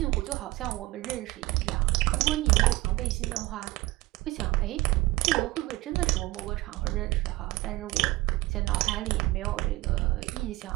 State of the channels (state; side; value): quieter; left; 19.5 dB